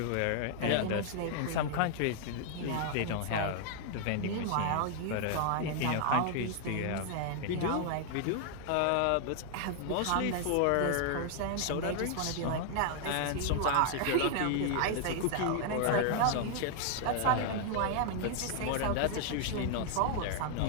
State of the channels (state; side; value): different; both; correlation 0.00